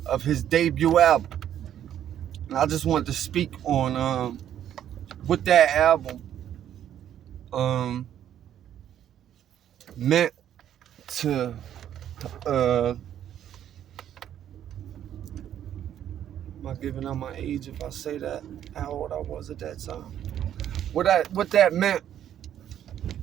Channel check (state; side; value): quieter; left; 10.5 dB